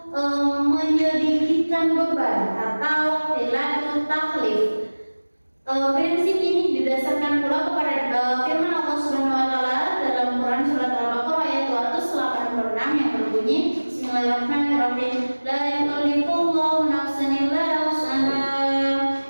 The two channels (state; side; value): inverted; both; correlation -1.00